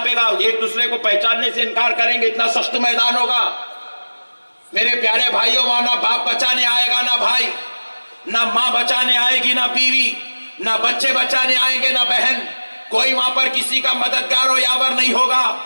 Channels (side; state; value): both; inverted; correlation -1.00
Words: گا، ایک دوسرے کو پہچاننے سے انکار کریں گے. اتنا سخت میدان ہوگا. میرے پیارے بھائیوں، وہاں نہ باپ بچانے آئے گا نہ بھائی، نہ ماں بچانے آئے گی نہ بیوی، نہ بچے بچانے آئیں گے نہ بہن. کوئی وہاں پر کسی کا مددگار و یاور نہیں ہوگا.